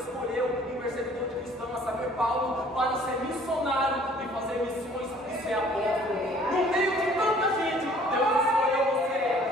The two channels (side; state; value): both; normal; correlation 0.55